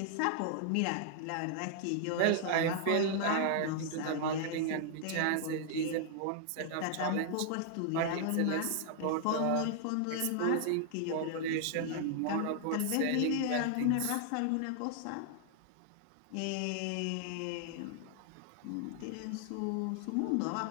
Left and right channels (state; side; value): different; both; correlation 0.00